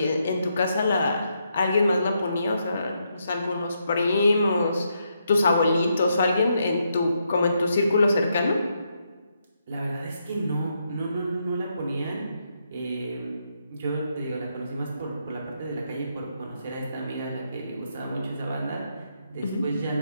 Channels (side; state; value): both; inverted; correlation -0.79